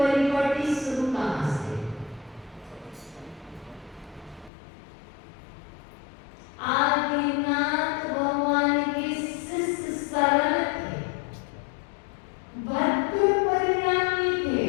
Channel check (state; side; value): drops out; right; at 4.5 s